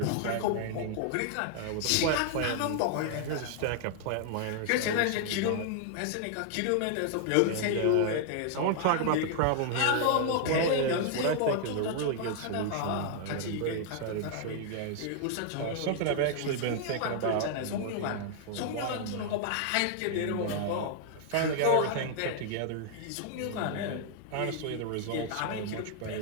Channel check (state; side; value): different; both; correlation -0.01